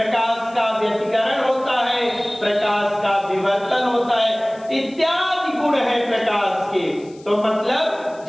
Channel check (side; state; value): left; noise; hiss, 27 dB below the sound